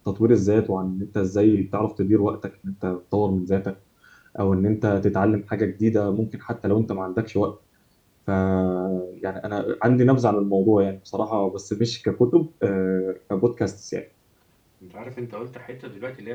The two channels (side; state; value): both; identical; correlation 1.00